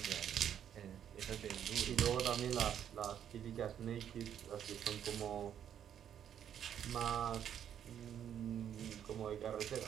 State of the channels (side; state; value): left; quieter; 9.4 dB